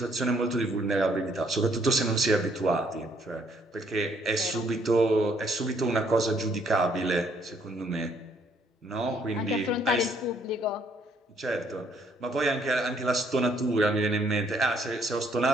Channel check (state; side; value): normal; both; correlation 0.67